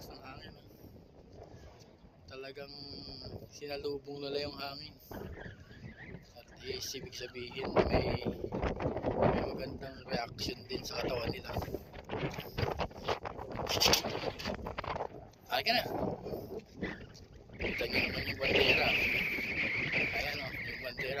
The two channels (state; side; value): identical; both; correlation 1.00